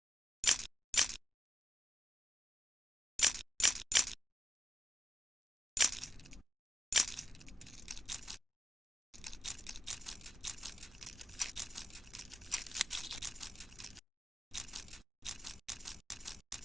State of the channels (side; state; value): both; normal; correlation 0.87